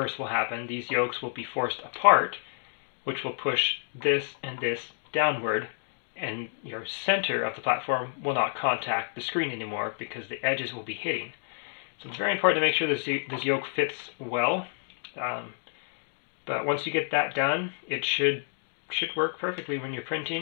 will happen. These yokes will be forced apart, which will push this and this downward, and your center of the platform will not contact the screen anymore because the edges will be hitting. So it's very important to make sure this yoke fits well. But once you get that done, it should work perfectly when you're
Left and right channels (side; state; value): right; silent; digital silence